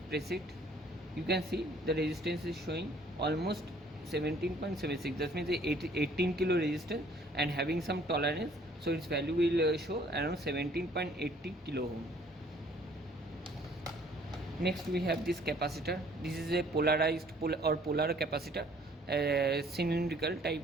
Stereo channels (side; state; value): both; normal; correlation 0.58